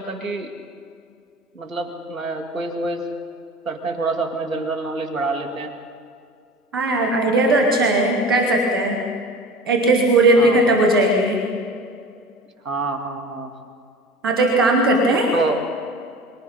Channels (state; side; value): normal; both; correlation 0.38